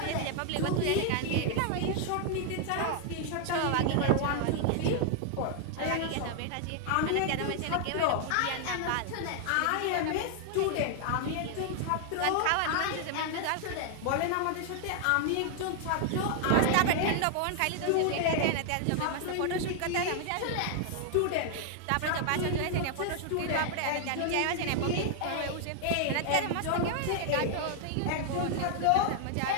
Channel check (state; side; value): different; both; correlation 0.00